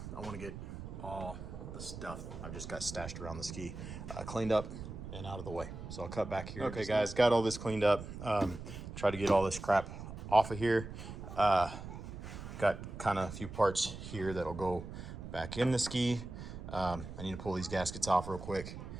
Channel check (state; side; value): noise; right; rumble, 10 dB below the sound